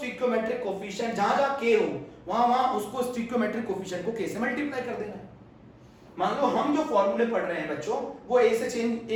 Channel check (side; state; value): both; identical; correlation 1.00